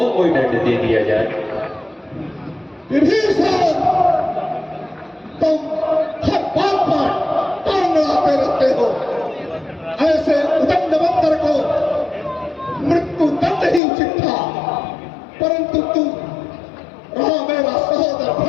कोई दंड दे दिया जाए। विभीषण, तुम हर बात पर टांग अड़ाते रहते हो। ऐसे उदंड बंदर को मृत्यु दंड ही उचित था, परंतु तू रहा मेरा सहोदर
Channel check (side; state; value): right; drops out; at 13.8 s